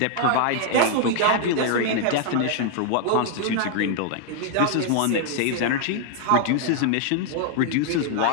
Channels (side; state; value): both; different; correlation 0.00